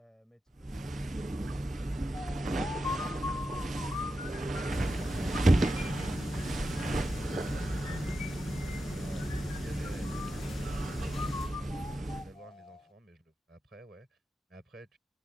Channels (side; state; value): both; normal; correlation 0.89